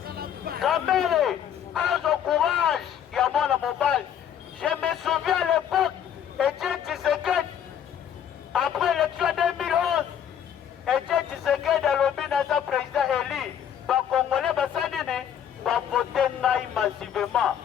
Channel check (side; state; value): right; quieter; 9.3 dB